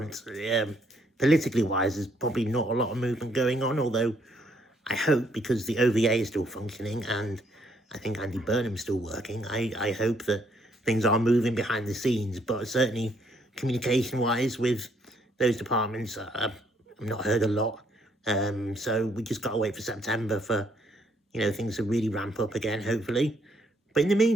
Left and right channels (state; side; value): normal; both; correlation 0.69